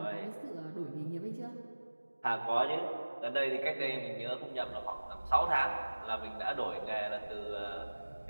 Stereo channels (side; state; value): both; inverted; correlation -1.00